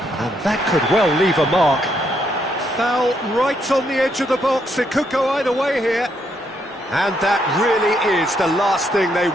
And that could well leave a mark. Foul right on the edge of the box. It could go either way here. And that really is the last thing they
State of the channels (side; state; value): both; normal; correlation 0.75